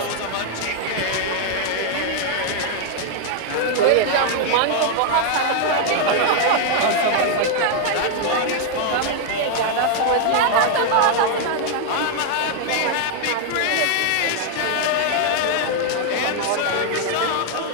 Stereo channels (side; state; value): both; different; correlation 0.00